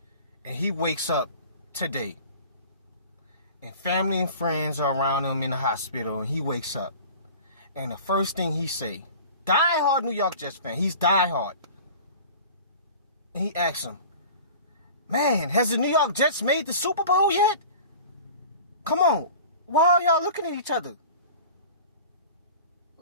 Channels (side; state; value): both; inverted; correlation -0.40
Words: And he wakes up today, and family and friends are around him in the hospital, and he wakes up. And the first thing he say, diehard New York Jets fan, he's diehard. And he asks him, man, has the New York Jets made the Super Bowl yet? Come on, why are y'all looking at each other?